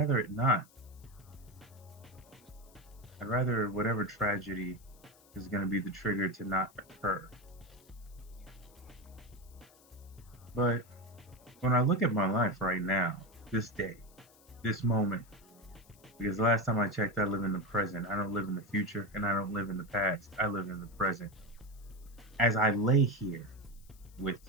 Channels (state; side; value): noise; left; hiss, 27 dB below the sound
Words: it not. I'd rather whatever tragedy is going to be the trigger to not occur. But when I look at my life right now, this day, this moment, because last time I checked, I live in the present. I don't live in the future, and I don't live in the past. I live in the present. As I lay here with